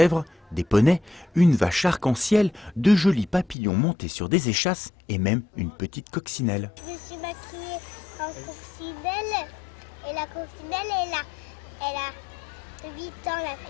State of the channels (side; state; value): right; drops out; at 3.6 s